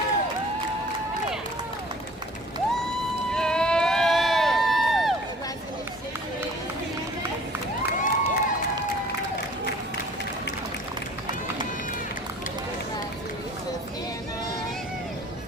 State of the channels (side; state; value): both; normal; correlation 0.50